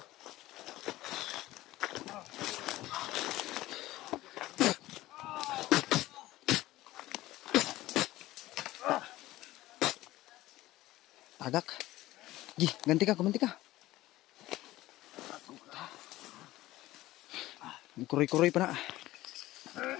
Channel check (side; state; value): right; quieter; 16.8 dB